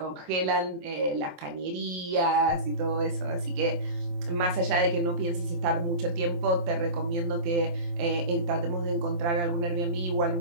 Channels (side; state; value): left; late; 24 ms